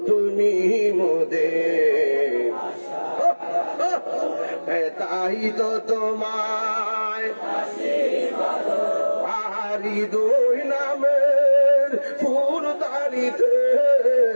তুমি মোদের, তাই তো তোমায় হৃদয় নামের ফুলদানিতে,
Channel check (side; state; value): both; inverted; correlation -1.00